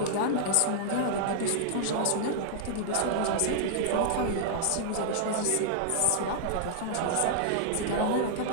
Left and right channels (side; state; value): both; different; correlation -0.01